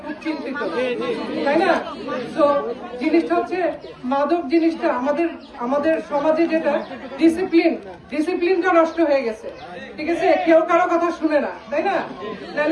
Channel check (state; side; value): identical; both; correlation 1.00